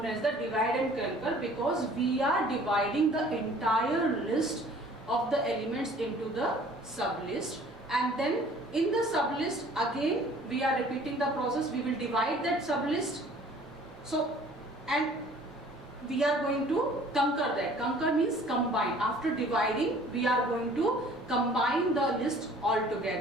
as the divide and conquer because we are dividing the entire list of the elements into the sublist, and then in the sublist again we are repeating the process. We will divide that sublist. So, and we are going to conquer that. Conquer means combine. After dividing, we are going to combine the list all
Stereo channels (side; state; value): both; normal; correlation 0.52